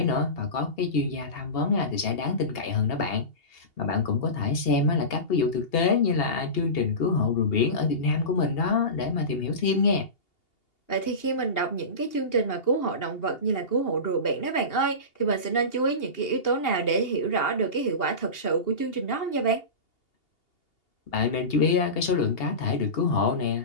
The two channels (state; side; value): late; right; 2.8 ms